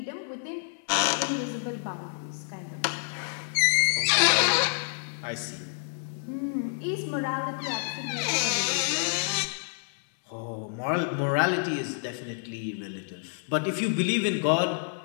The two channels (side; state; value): right; silent; digital silence